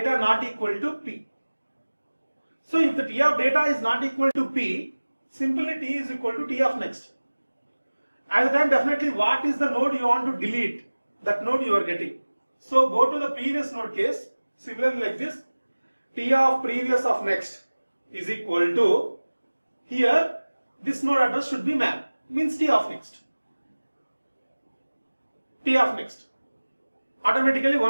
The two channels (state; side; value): inverted; both; correlation -1.00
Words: not equal to P. So if the T of data is not equal to P, simply T is equal to T of next. At the time definitely what is the node you want to delete, that node you are getting. So go to the previous node case, similarly like this, T of previous of next is equal to, here this node address should be map, means T of next. T of next. Automatically